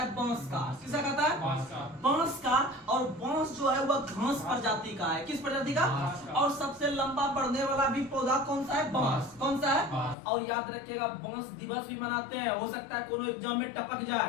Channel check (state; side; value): drops out; right; at 10.2 s